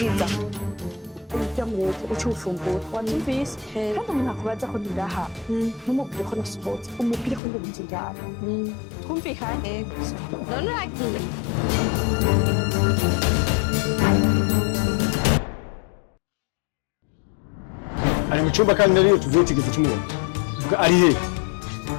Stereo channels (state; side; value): drops out; right; at 7.4 s